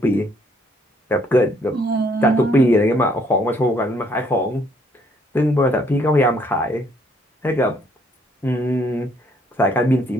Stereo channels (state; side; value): normal; both; correlation 0.66